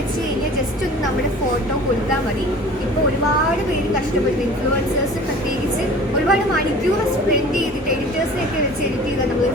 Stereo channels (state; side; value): normal; both; correlation 0.43